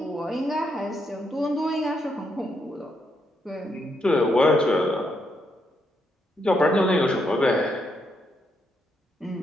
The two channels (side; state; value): both; normal; correlation 0.78